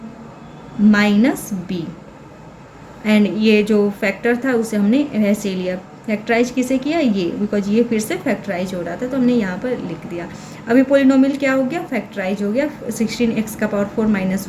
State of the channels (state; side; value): identical; both; correlation 1.00